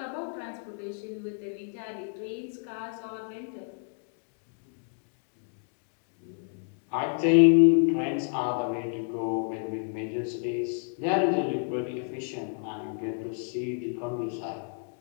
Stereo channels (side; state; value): right; silent; 58 dB below the other